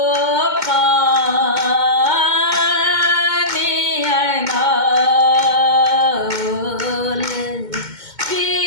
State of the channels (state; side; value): late; left; 2.2 ms